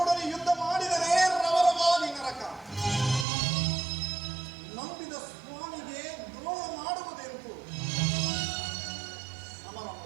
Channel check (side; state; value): left; drops out; at 3.2 s